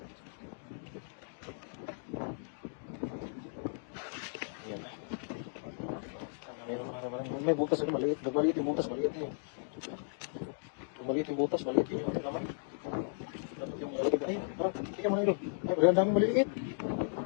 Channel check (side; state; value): right; silent; digital silence